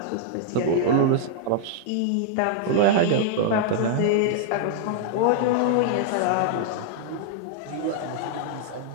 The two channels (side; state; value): both; different; correlation -0.01